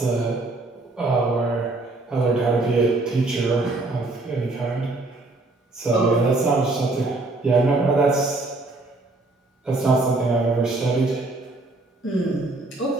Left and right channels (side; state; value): left; quieter; 3.1 dB